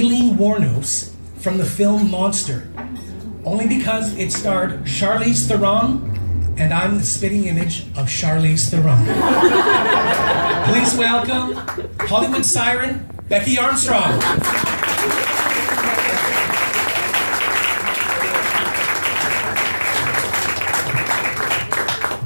Wuornos from the film Monster, only because it starred Charlize Theron, and I'm the spitting image of Charlize Theron. Please welcome Hollywood siren, Becky Armstrong.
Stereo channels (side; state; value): both; inverted; correlation -1.00